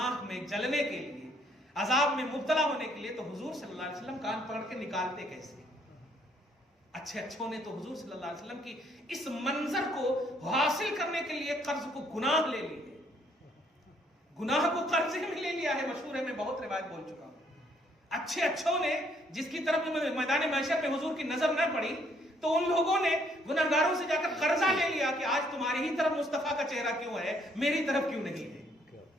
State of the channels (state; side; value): normal; both; correlation 0.67